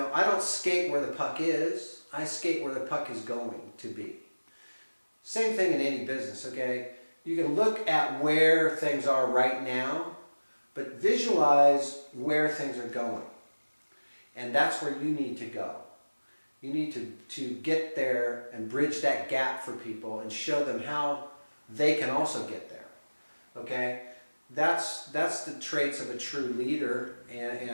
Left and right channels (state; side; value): inverted; both; correlation -1.00